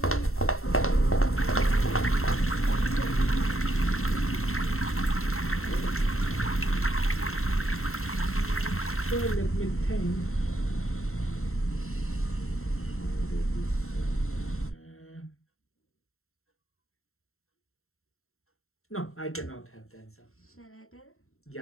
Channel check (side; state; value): right; late; 0.62 ms